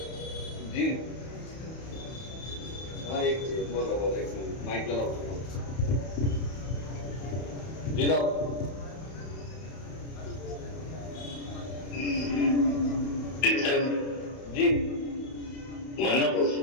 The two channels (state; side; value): late; right; 31 ms